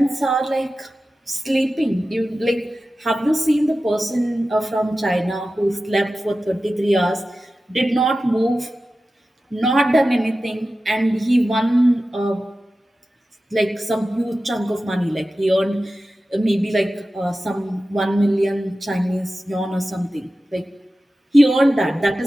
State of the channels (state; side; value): normal; both; correlation 0.94